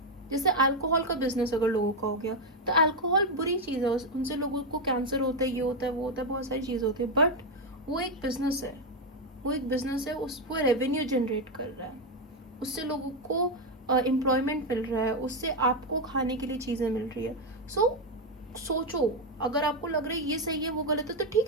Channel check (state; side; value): normal; both; correlation 0.06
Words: जैसे अल्कोहल का बिजनेस अगर लोगों का हो गया तो अल्कोहल बुरी चीज़ है, उनसे लोगों को कैंसर होता है, ये होता है, वो होता है, बहुत सारी चीज़ होती है, बट वो एक बिजनेस है, वो एक बिजनेस है, वो रेवेन्यू जनरेट कर रहा है, उससे लोगों को एम्प्लॉयमेंट मिल रहा है, उससे आपको खाने के लिए चीज़ें मिल रही है। सोचो, अगर आपको लग रहा है ये सही है वो गलत है तो